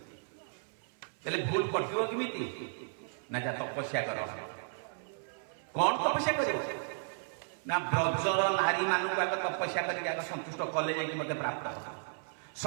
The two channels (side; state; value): left; silent; 55 dB below the other